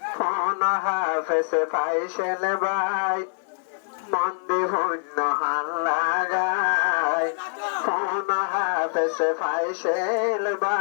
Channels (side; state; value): right; silent; digital silence